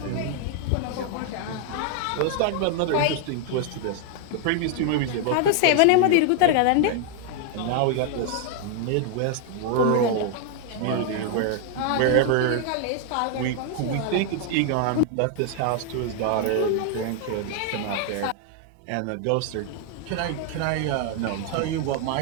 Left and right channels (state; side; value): different; both; correlation 0.00